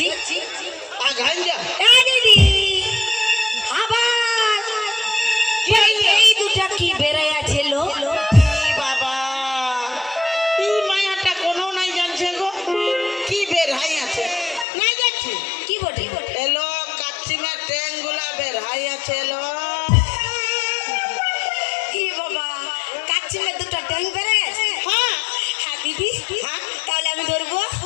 আগান যা। হ্যাঁ দিদি, আবার এই দুটা কি বেড়াই আছে লো? এই বাবা, এই মায়াটা কোনো নাই জানছে গো, কি বের হাই আছে নাই যাচ্ছি। কি বটে? এলো কাচ্চিমের ট্যাং গুলা বের হাই আছে। এলো কি বাবা, কাচ্চিমের দুটা ট্যাং বেড়াই আছে? হ্যাঁ হ্যাঁ দিদি, হ্যাঁ তাহলে আমি ধরবো।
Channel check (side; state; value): right; drops out; at 14.7 s